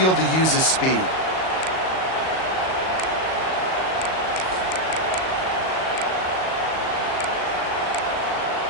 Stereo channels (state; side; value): late; right; 38 ms